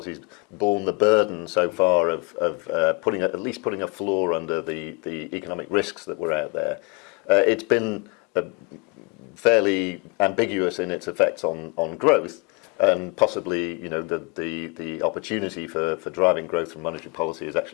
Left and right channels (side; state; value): right; quieter; 29.1 dB